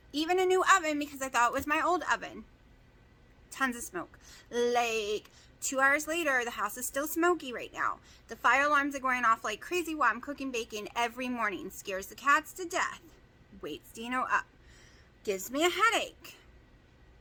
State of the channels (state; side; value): identical; both; correlation 1.00